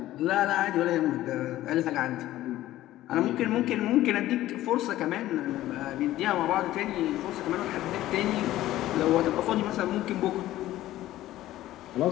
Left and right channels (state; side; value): quieter; right; 14.8 dB